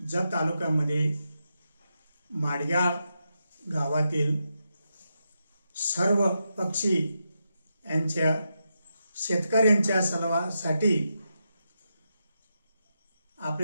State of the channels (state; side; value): inverted; both; correlation -0.86